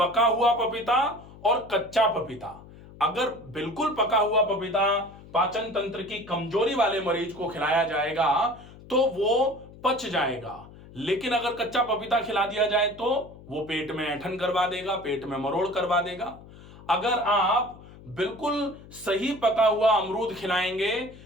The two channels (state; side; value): noise; left; hum, 19 dB below the sound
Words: हुआ पपीता और कच्चा पपीता, अगर बिल्कुल पका हुआ पपीता पाचन तंत्र की कमजोरी वाले मरीज को खिलाया जाएगा तो वो पच जाएगा, लेकिन अगर कच्चा पपीता खिला दिया जाए तो वो पेट में ऐंठन करवा देगा, पेट में मरोड़ करवा देगा। अगर आप बिल्कुल सही पका हुआ अमरूद खिलाएंगे